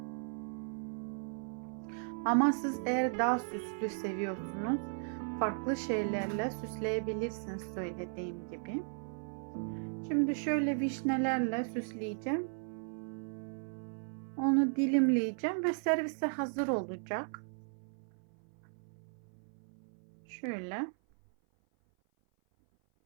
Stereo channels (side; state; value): left; silent; 54 dB below the other